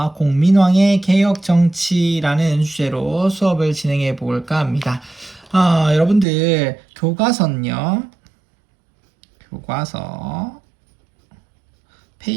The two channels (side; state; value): left; drops out; at 6.2 s